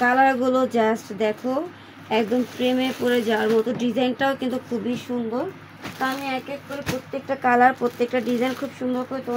কালারগুলো, জাস্ট দেখো একদম প্রেমে পড়ে যাওয়ার মতো। ডিজাইনটাও কিন্তু খুবই সুন্দর। তো আমি এক এক করে প্রত্যেকটা কালার, প্রত্যেকটা ডিজাইন খুব সুন্দর করে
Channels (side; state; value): both; identical; correlation 1.00